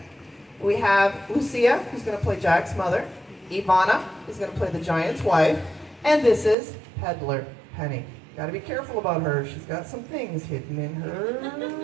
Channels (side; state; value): left; drops out; at 6.6 s